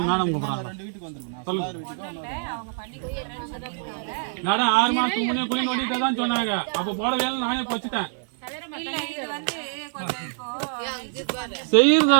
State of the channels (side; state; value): left; silent; 61 dB below the other